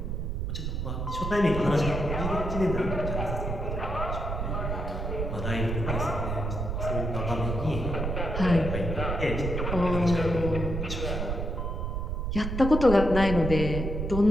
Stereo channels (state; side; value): noise; right; rumble, 2 dB below the sound